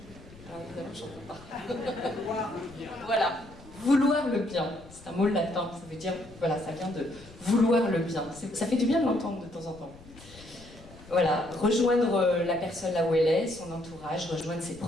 Ah, évidemment, j'en peux pas. Voilà, vouloir le bien, c'est un mot latin, ça veut dire, voilà, ça vient de vouloir le bien. Ça fait du bien de l'entendre de temps en temps. Voilà, rejoindre la personne là où elle est, son entourage, rejoindre ses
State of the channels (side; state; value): left; noise; rumble, 20 dB below the sound